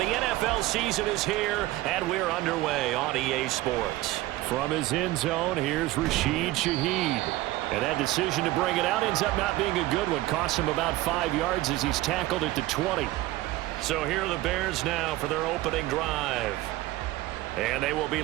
NFL season is here, and we're underway on EA Sports. From his end zone, here's Rashid Shaheed. And that decision to bring it out ends up not being a good one. Costs him about 5 yards as he's tackled at the 20. So here are the Bears now for their opening drive. And they will be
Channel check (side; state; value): left; quieter; 17.5 dB